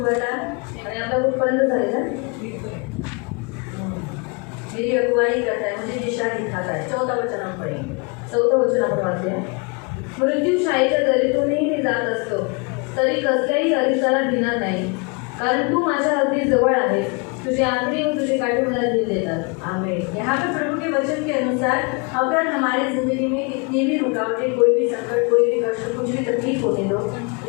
था आणि आपला कुठपर्यंत झालेला. मेरी अगुवाई करता है, मुझे दिशा दिखाता है. 14 वचन हम पढ़ेंगे. 14 वचन आपण वाचूया. मृत्यूशायेच्या दरीतूनही मी जात असतो तरी कसल्याही अरिसाला भिणार नाही, कारण तू माझ्या अगदी जवळ आहे. तुझे आखरी व तुझे काठी मला दिल देतात. आमीन. यहाँ पे प्रभु के वचन के अनुसार अगर हमारी जिंदगी में कितनी भी रुकावटें, कोई भी संकट, कोई भी कष्ट, कुछ भी तकलीफ होने दो,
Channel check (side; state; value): right; quieter; 32.3 dB